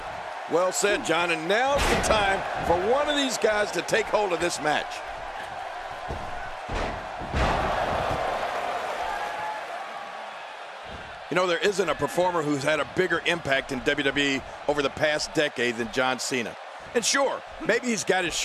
Well said, John, and now's the time for one of these guys to take hold of this match. You know, there isn't a performer who's had a bigger impact in WWE over the past decade than John Cena. And sure, maybe he's got his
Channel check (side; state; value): both; identical; correlation 1.00